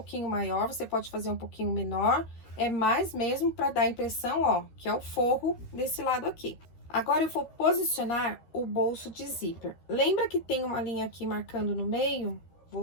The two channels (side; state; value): right; late; 13 ms